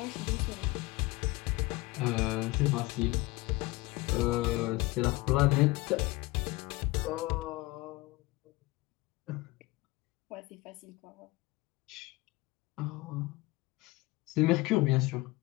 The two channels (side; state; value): right; quieter; 21.3 dB